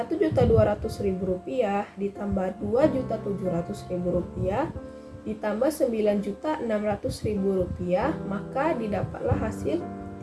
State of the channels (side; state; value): both; identical; correlation 1.00